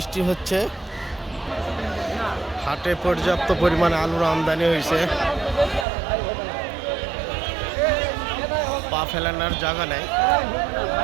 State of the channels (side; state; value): left; drops out; at 5.9 s